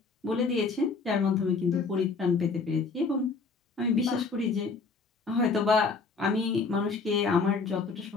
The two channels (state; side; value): quieter; right; 4.5 dB